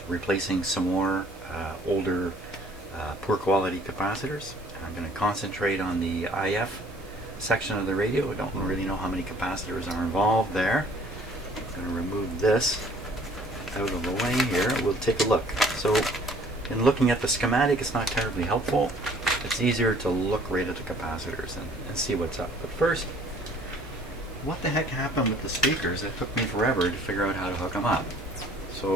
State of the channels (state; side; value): normal; both; correlation 0.55